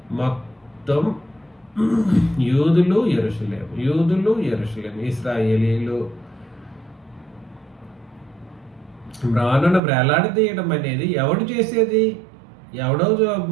మొత్తం యూదులు యెరూషలేము ఇశ్రాయేలీలు. మ్రానును వేలాడదీయడం అనేది ఎవడు చేసేది? ఎవడో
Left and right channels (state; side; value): drops out; left; at 9.8 s